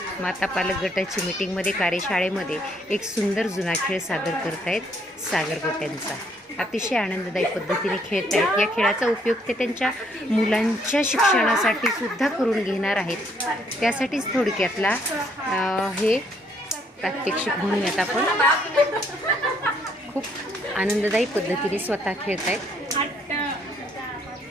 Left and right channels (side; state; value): both; normal; correlation 0.69